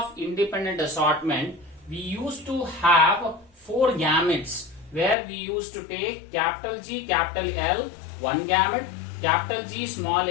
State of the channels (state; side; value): drops out; right; at 5.2 s